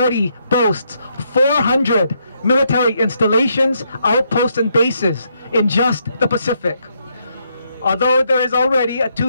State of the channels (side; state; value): both; inverted; correlation -0.76